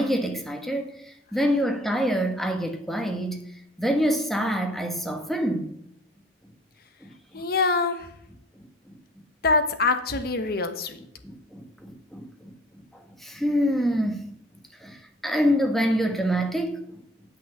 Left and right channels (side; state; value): both; normal; correlation 0.53